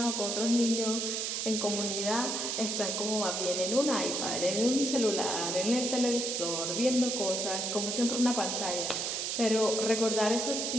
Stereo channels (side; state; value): right; noise; hiss, 1 dB below the sound